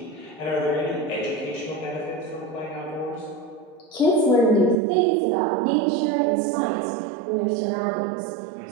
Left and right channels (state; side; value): drops out; left; at 4.8 s